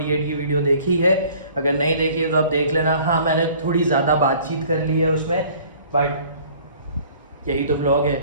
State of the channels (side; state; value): both; inverted; correlation -0.52